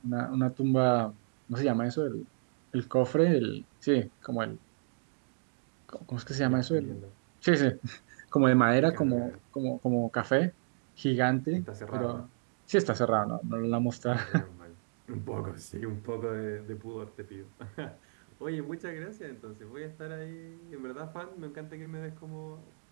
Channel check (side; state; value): left; silent; digital silence